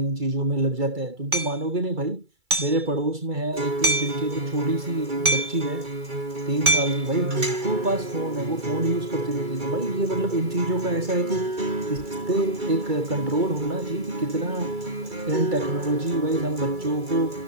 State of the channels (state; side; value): late; left; 2.3 ms